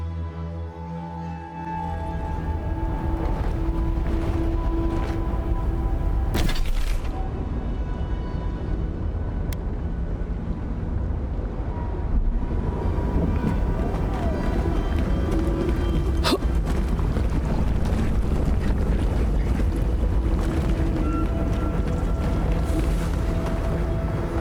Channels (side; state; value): both; identical; correlation 1.00